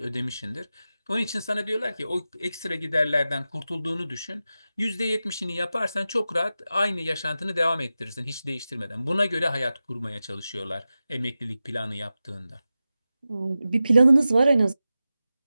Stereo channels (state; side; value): inverted; both; correlation -0.93